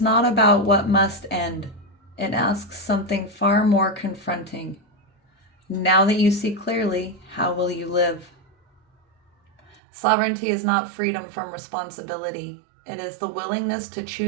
about what must end. It asks something far more confronting. Now that you see clearly, how will you live? Sovereignty is not freedom from responsibility. It is the willingness to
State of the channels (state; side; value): drops out; left; at 9.8 s